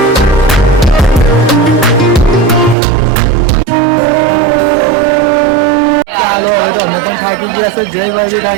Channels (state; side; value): drops out; left; at 2.8 s